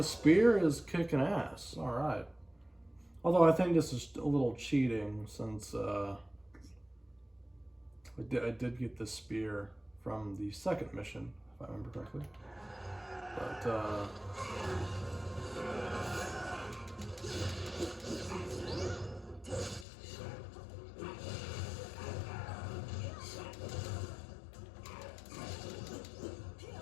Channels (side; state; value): right; drops out; at 19.9 s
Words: spear is kicking ass. Alright. Although I think this is a little cheating, since I did get the spear from the second mission, if I remember correctly. But,